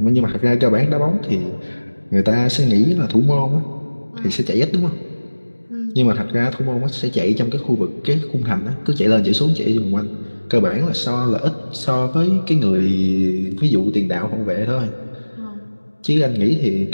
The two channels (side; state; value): both; inverted; correlation -1.00